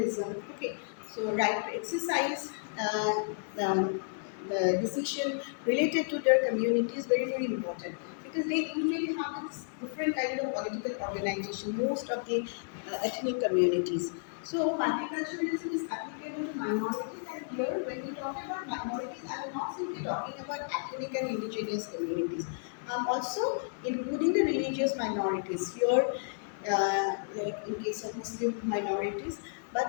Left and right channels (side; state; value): right; silent; 56 dB below the other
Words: Okay, so right to exercise the decision related to their community is very very important, because they usually have this different kind of political organization, most of the ethnic communities. So multiculturalism is applicable to minorities, and here when we talk about minorities, I am not simply talking about ethnic and indigenous communities. I'm also including the religious minorities here, like in case of Muslim minorities.